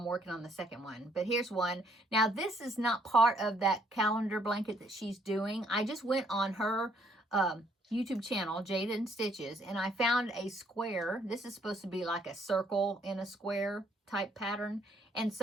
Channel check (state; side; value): normal; both; correlation 0.66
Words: working on the second one. But here's one. Now, this is not part of that calendar blanket that she's doing. I just went on her YouTube channel, Jada and Stitches, and I found a square. This is supposed to be like a circle in a square type pattern. And